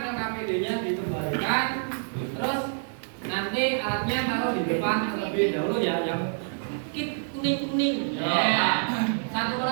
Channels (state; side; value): silent; left; digital silence